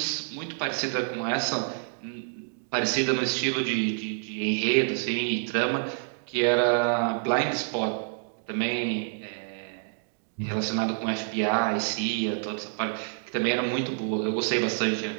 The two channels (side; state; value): left; silent; digital silence